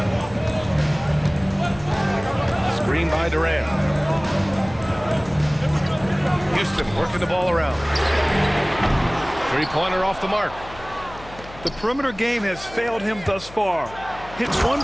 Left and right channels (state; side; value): noise; left; hum, 18 dB below the sound